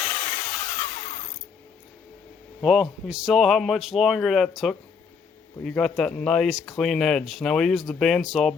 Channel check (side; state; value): right; quieter; 5.8 dB